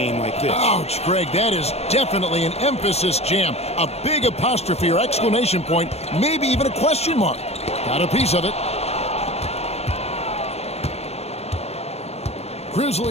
like this. Ouch, Greg, that is definitely an emphasis jam. A big apostrophe or exclamation point, maybe even a question mark. Got a piece of it.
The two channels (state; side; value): late; right; 0.30 ms